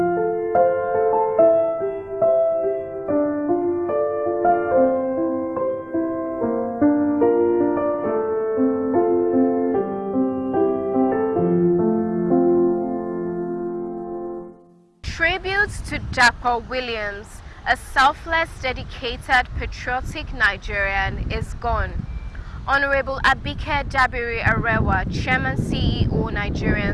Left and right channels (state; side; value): identical; both; correlation 1.00